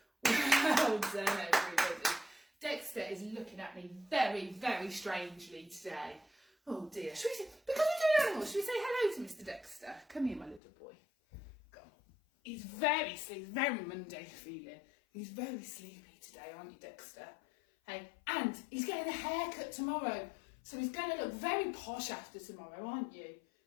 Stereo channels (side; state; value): right; drops out; at 10.6 s